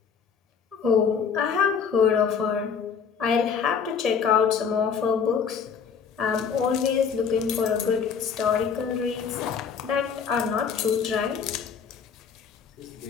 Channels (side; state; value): right; quieter; 6.6 dB